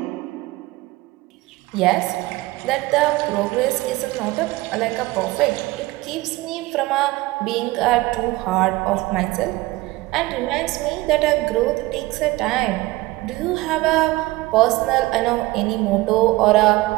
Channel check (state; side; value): quieter; left; 19.7 dB